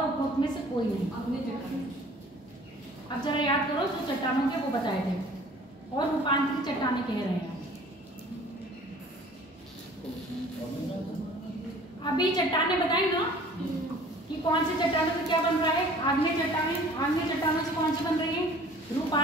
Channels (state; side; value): normal; both; correlation 0.50